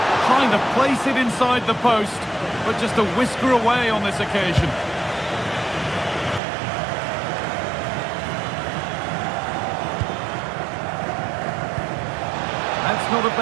trying to place it inside the post, but just a whisker away on this occasion. That's not a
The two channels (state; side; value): drops out; left; at 6.4 s